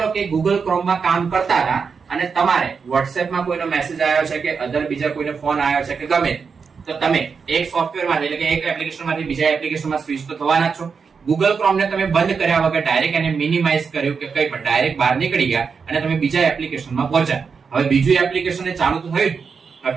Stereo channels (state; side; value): quieter; left; 5.6 dB